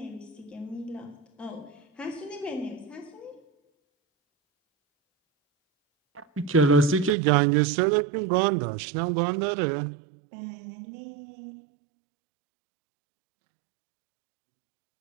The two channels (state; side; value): drops out; left; at 7.2 s